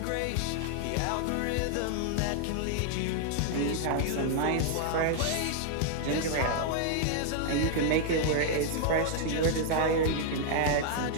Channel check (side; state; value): both; different; correlation 0.00